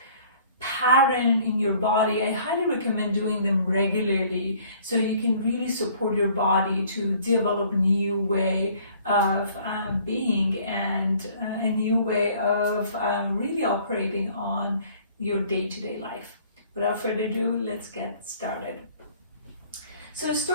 pattern in your body, I highly recommend doing them regularly so you can really support your body to develop a new way of being and a new way of really operating on your day-to-day life. Without further ado, let's get started. So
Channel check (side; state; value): both; inverted; correlation -0.56